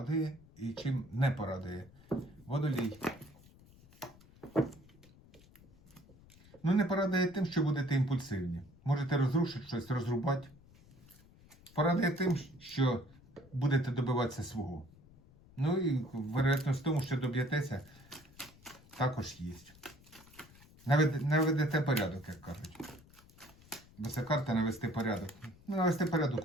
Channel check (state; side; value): noise; left; rumble, 24 dB below the sound